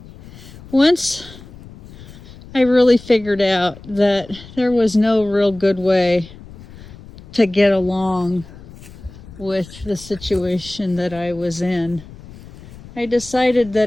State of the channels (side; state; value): left; noise; rumble, 18 dB below the sound